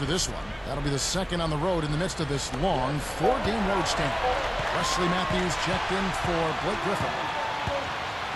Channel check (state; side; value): identical; both; correlation 1.00